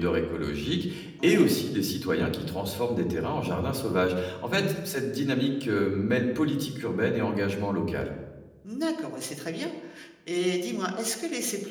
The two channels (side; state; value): both; identical; correlation 1.00